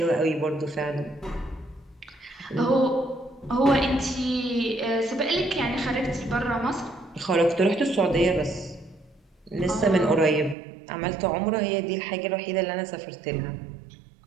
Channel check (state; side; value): drops out; left; at 10.6 s